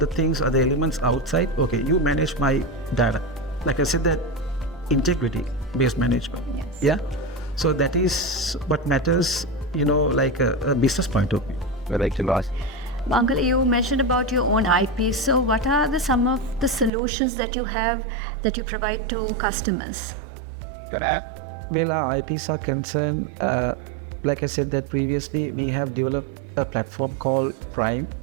things, other elements outside. Okay, you manage my data. Like I said, that integrity-based management. Yes. Yeah. So that is what matters, like a business point of view. I'd like to ask. Uncle, you mentioned about your own IP. So what are some of the solutions that you have that you provide to customers? Well, our IPs are concerned, like I said that previously, we have developed a platform called Prime.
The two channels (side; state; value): left; drops out; at 16.9 s